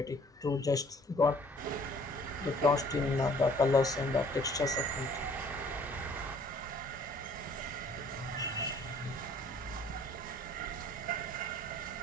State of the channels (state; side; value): normal; both; correlation 0.56